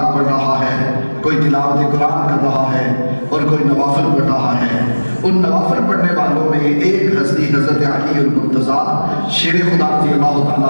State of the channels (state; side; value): inverted; both; correlation -1.00